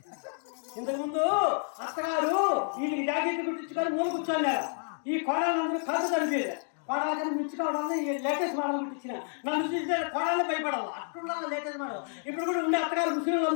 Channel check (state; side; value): silent; right; 57 dB below the other